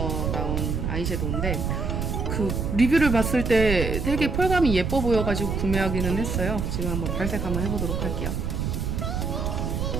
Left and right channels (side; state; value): right; noise; rumble, 1 dB below the sound